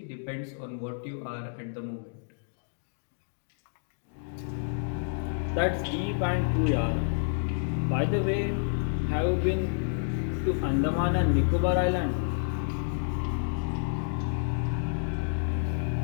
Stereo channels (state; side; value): silent; right; digital silence